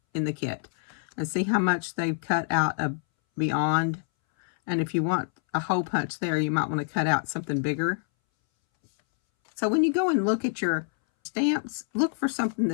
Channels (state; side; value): silent; right; 60 dB below the other